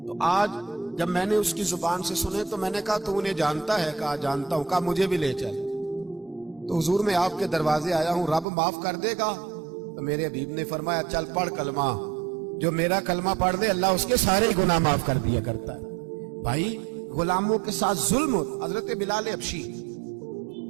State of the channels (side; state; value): left; drops out; at 8.5 s